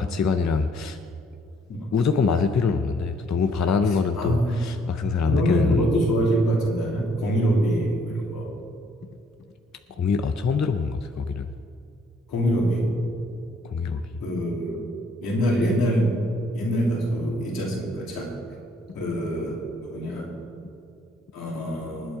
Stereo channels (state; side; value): normal; both; correlation 0.66